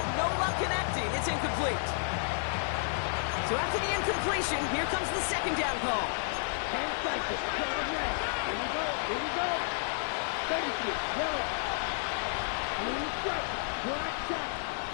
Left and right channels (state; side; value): silent; right; digital silence